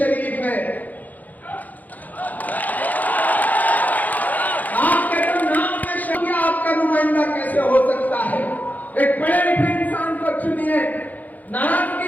है, आपके तो नाम में शरीफ, आपका नुमाइंदा कैसे हो सकता है? एक पढ़े लिखे इंसान को चुनिए, नाराजगी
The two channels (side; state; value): right; late; 0.081 ms